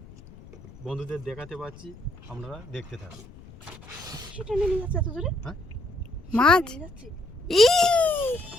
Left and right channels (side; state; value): left; noise; rumble, 19 dB below the sound